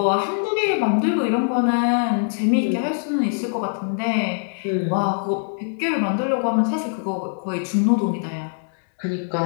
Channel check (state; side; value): silent; right; digital silence